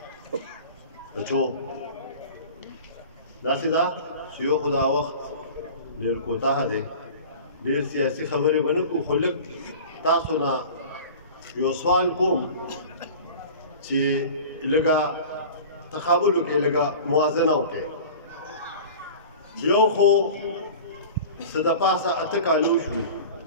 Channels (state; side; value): inverted; both; correlation -0.38